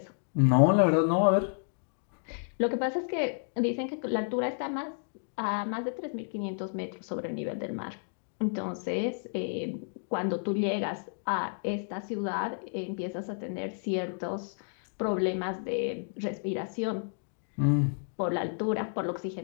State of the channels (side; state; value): right; silent; digital silence